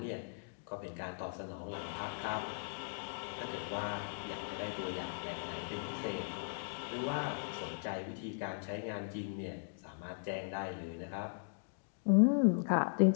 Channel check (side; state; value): right; silent; digital silence